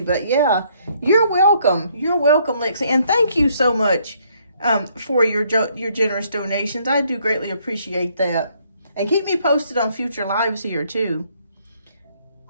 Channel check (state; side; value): inverted; both; correlation -0.68